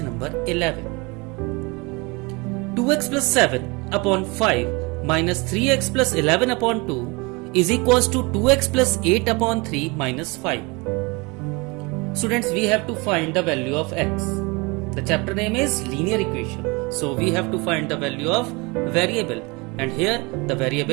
number 11. 2x plus 7 upon 5 minus 3x plus 11 upon 2 is equals to 2x plus 8 upon 3 minus 5. Students, we have to find the value of x. The chapter name is linear equation. So we have to find the value of variable, and here the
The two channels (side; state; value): left; quieter; 27.1 dB